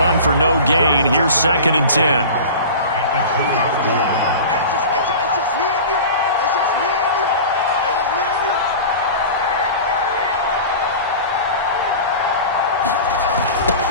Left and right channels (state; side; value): inverted; both; correlation -0.34